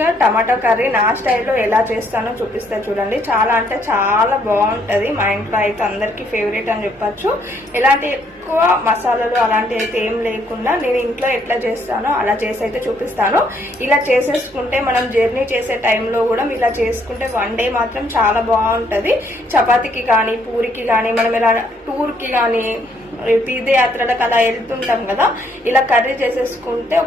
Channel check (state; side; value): normal; both; correlation 0.69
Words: గా టమాటా కర్రీ నా స్టైల్లో ఎలా చేస్తానో చూపిస్తా చూడండి. చాలా అంటే చాలా బాగుంటది. మా ఇంట్లో అయితే అందరికి ఫేవరెట్ అని చెప్పచ్చు. ఎలాంటి ఎక్కువ మసాలాలు అలాంటివి అయితే ఏం లేకుండా నేను ఇంట్లో ఎట్లా చేస్తానో అలా చేసి అయితే చూపిస్తాను. ఇలా చేసేసుకుంటే మనం జర్నీ చేసే టైంలో కూడా ఇలా చేసుకుంటే వన్ డే మాత్రం చాలా బాగుంటది. చపాతీకి కానీ పూరికి కానీ మనం ఇలా టూర్కి కానీ తీర్థయాత్రలకు అలా వెళ్తుంటాం కదా, ఇలా కర్రీ చేసేసుకుంటే